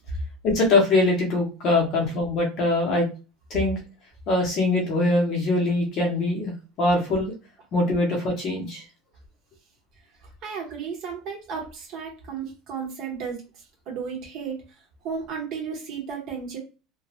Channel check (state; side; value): normal; both; correlation 0.37